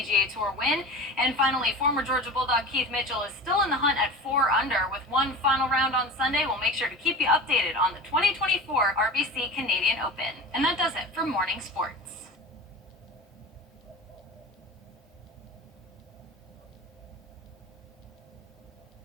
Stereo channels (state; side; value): normal; both; correlation 0.33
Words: Tour win. And finally, former Georgia Bulldog Keith Mitchell is still in the hunt at 4 under. With one final round on Sunday, we'll make sure to keep you updated on the 2024 RBC Canadian Open. And that does it for Morning Sports.